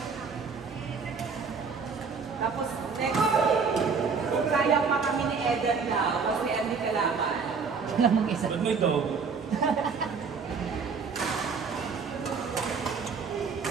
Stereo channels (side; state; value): left; quieter; 5.3 dB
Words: Tapos, next, kung kaya pa kami ni Eden daw, kasi hindi kalaman. Wala mong isa. Ba't mo ito?